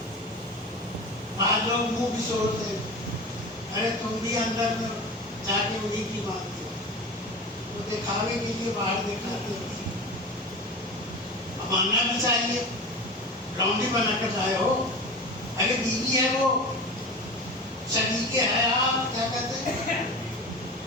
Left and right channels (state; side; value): normal; both; correlation 0.31